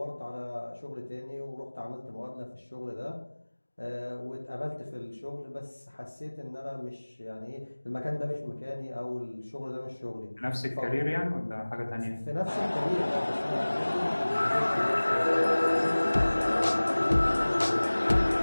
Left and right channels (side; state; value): both; inverted; correlation -1.00